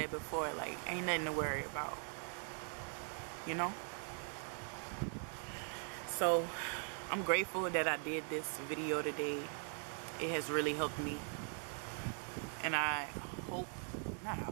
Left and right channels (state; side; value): silent; left; 50 dB below the other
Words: before, like, ain't nothing to worry about, you know. So I'm grateful that I did this video today. It has really helped me, and I hope, not I